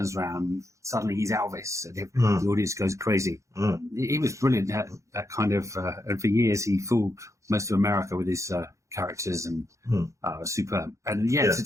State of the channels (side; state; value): left; late; 0.15 ms